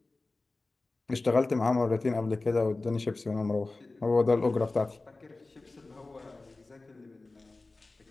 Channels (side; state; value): right; quieter; 3.3 dB